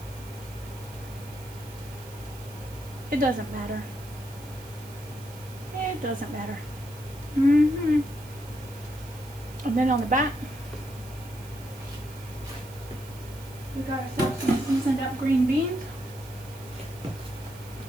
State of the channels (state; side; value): noise; right; hiss, 19 dB below the sound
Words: It doesn't matter. It doesn't matter. And then on the back, we got ourselves some seasoned up green beans.